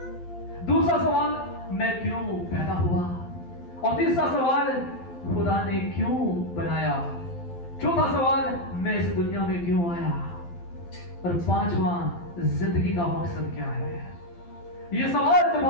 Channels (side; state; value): right; late; 12 ms